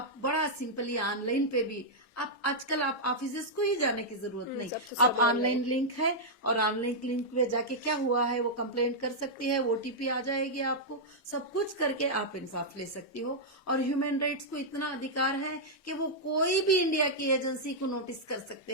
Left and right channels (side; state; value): both; normal; correlation -0.07